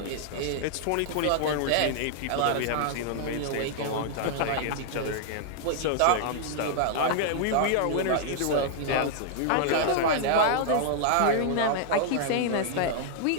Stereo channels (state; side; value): different; both; correlation -0.01